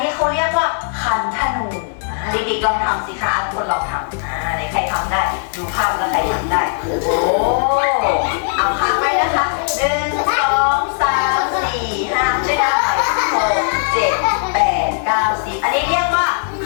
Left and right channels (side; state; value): right; silent; digital silence